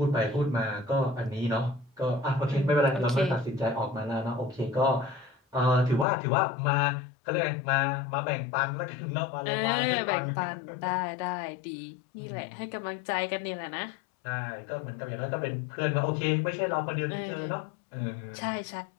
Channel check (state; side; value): drops out; right; at 6.1 s